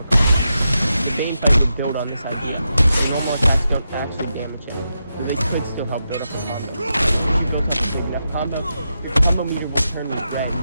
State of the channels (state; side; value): inverted; both; correlation -0.87